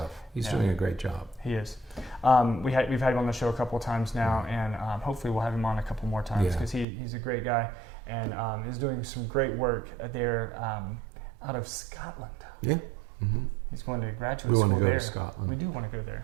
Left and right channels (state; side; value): drops out; left; at 6.9 s